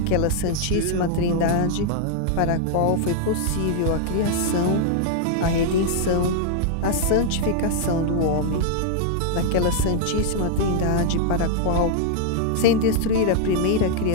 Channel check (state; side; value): different; both; correlation 0.00